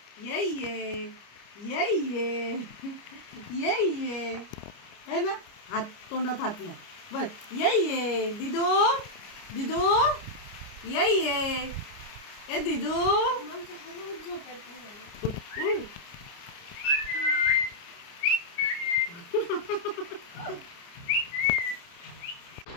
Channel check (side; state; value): right; late; 29 ms